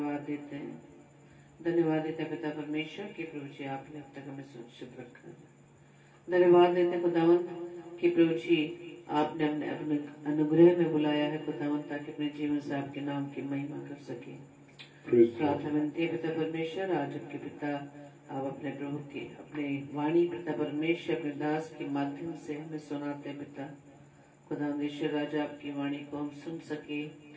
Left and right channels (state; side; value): identical; both; correlation 1.00